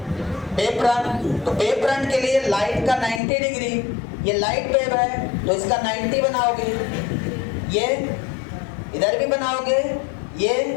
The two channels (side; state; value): right; drops out; at 3.2 s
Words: Wave front. तो वेव फ्रंट के लिए लाइट का 90 डिग्री, ये लाइट वेव है तो इसका 90 बनाओगे, ये इधर भी बनाओगे, ये